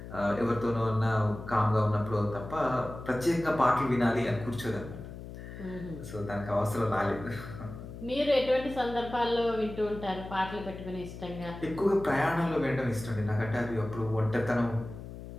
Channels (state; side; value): noise; left; hum, 12 dB below the sound